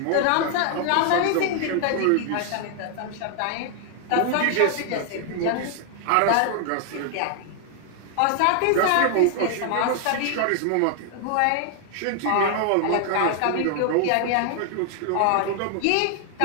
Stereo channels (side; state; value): both; different; correlation 0.00